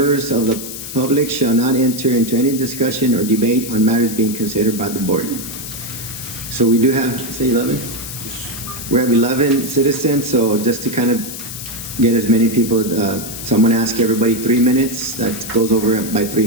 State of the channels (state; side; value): noise; left; hiss, 9 dB below the sound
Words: of the public shall not enter into any discussion or debate on matters being considered by the board. So we do have, say 11? We have 11 citizens, so just to kind of get as many people, so I'm going to ask everybody 3 minutes. That goes over by 3